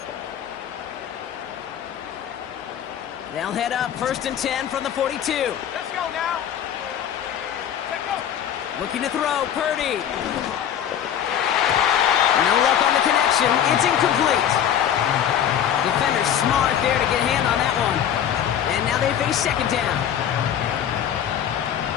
They'll head up 1st and 10 from the 42. Let's go now. Let's go. Looking to throw, Purdy. No luck on the connection. It's incomplete. Defender's smart there to get a hand on that one. And now they face 2nd down.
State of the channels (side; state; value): right; quieter; 9.6 dB